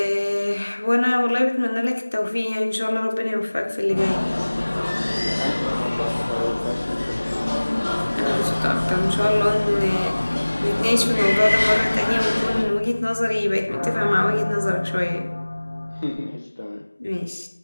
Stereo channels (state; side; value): inverted; both; correlation -1.00